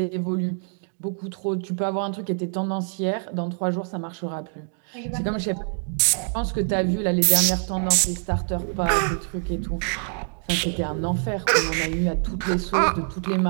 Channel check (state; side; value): silent; left; 55 dB below the other